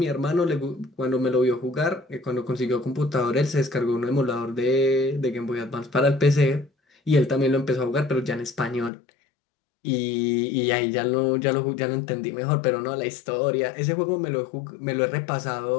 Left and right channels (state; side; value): drops out; right; at 8.9 s